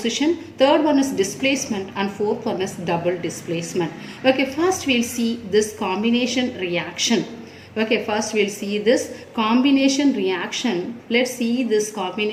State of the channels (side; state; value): both; identical; correlation 1.00